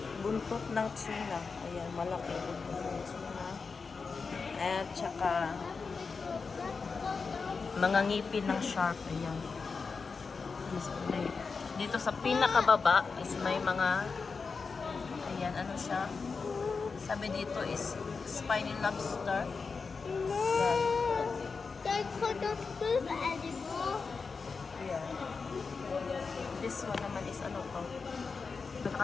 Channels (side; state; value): right; quieter; 4.8 dB